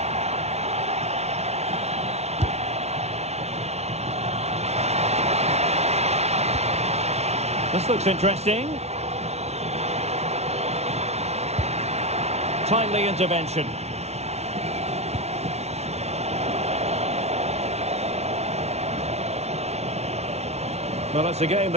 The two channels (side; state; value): left; late; 0.31 ms